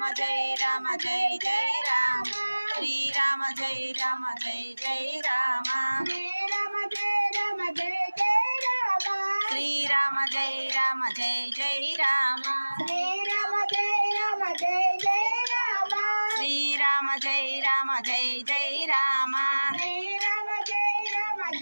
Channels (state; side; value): inverted; both; correlation -1.00